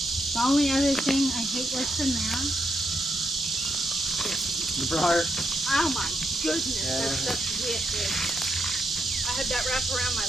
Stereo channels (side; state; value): both; normal; correlation 0.80